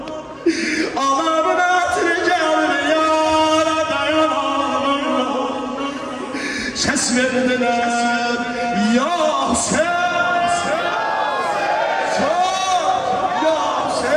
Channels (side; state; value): both; identical; correlation 1.00